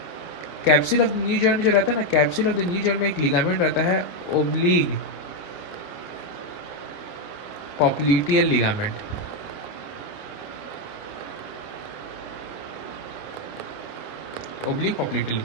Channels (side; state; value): right; late; 28 ms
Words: capsule of the new joint जो रहता है ना, capsule of the new joint में एक लिगामेंट रहता है oblique popliteal ligament, oblique popliteal